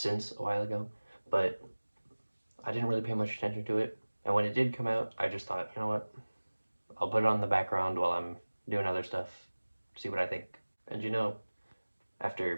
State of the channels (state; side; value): inverted; both; correlation -1.00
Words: a while ago, but I didn't really pay much attention to it. And when it did come out, I just thought, you know what, I'll put it on the background while I'm doing other stuff, see what I think. And